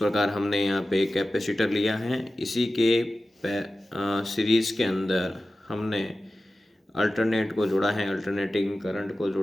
हमने यहाँ पे एक कैपेसिटर लिया है, इसी के सीरीज के अंदर हमने अल्टरनेट को जोड़ा है, अल्टरनेटिंग करंट को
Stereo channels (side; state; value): both; normal; correlation 0.94